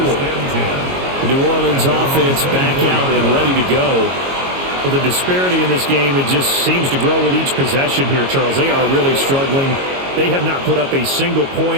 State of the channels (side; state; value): left; late; 22 ms